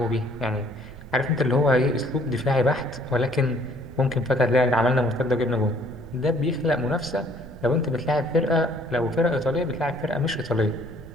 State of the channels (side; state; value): right; noise; rumble, 17 dB below the sound